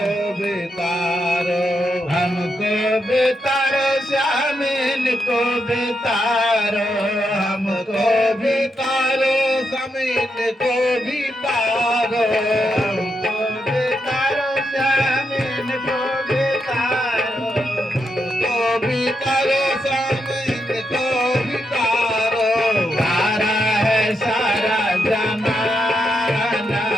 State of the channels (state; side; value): normal; both; correlation 0.82